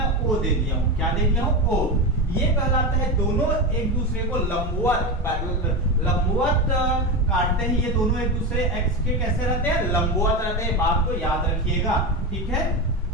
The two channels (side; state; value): both; normal; correlation 0.18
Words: O दे दिया हूं। क्या दे दिया हूं, O। ये कहलाता है दोनों एक दूसरे को लंबवत काटते हैं। ये दोनों एक दूसरे x के कैसे रहते हैं, लंबवत रहते हैं। बात को याद रखिएगा। ठीक है,